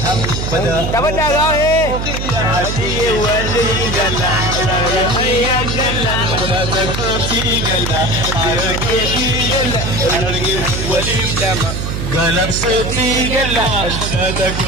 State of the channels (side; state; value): right; noise; hum, 3 dB below the sound